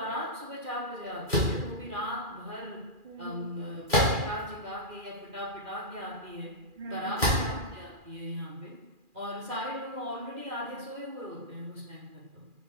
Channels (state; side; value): late; left; 2.4 ms